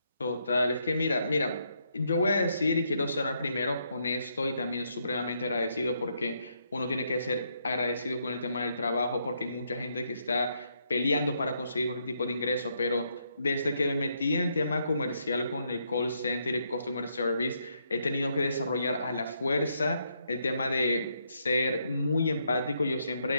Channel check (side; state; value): both; inverted; correlation -0.76